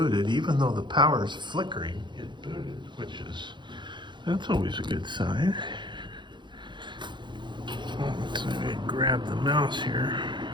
even though the power is flickering. It booted, that's always a good sign. So I'm going to grab the mouse here,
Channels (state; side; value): late; left; 0.23 ms